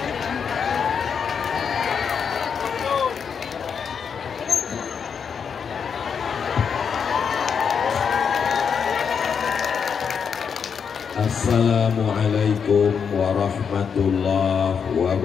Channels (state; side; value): quieter; right; 6.7 dB